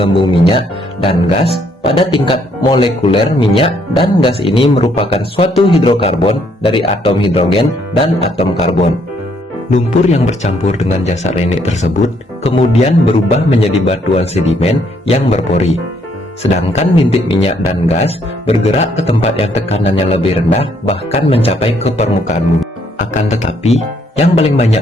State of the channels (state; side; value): normal; both; correlation 0.69